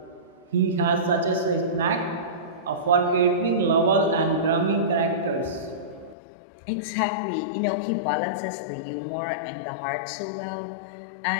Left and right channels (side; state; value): right; drops out; at 6.2 s